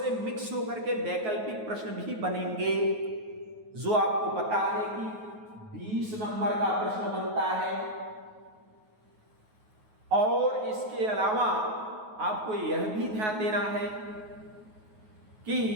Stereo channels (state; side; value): late; left; 9.3 ms